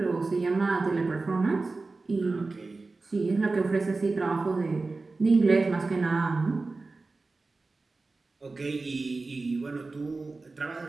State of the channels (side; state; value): left; quieter; 3.6 dB